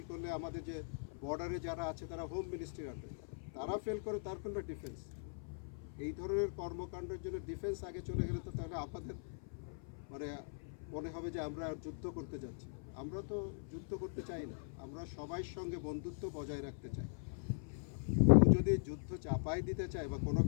করলে আমাদের যে বর্ডারে যারা আছে তারা হোম মিনিস্ট্রির আন্ডারে, তারা ফেল করে তার কোনো ডিফেন্স। এই ধরনের কর্মকাণ্ডের জন্য ডিফেন্স আগে চলে গেলে তো তাহলে আমাদের মানে মনে হবে যে আমরা যুদ্ধ করতে যাচ্ছি। আমরা তো যুদ্ধ করতে চাই না, আমরা সবার সঙ্গে বন্ধুত্ব বজায় রাখতে চাই। কেউ যদি যুদ্ধ চাপাই দিতে চায় বা কোনো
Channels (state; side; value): silent; right; 51 dB below the other